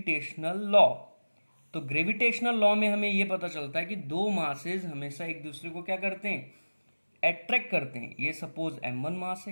law. तो ग्रेविटेशनल लॉ में हमें यह पता चलता है कि दो मासेस हमेशा एक दूसरे को क्या करते हैं, अट्रैक्ट करते हैं। ये सपोज m1 मास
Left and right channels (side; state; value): both; inverted; correlation -1.00